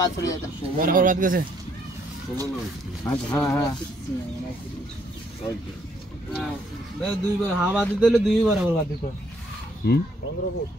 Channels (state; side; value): normal; both; correlation 0.69